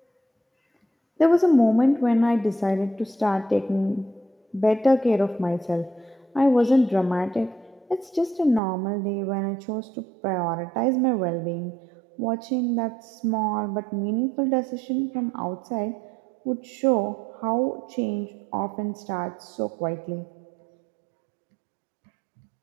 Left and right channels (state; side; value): drops out; left; at 8.6 s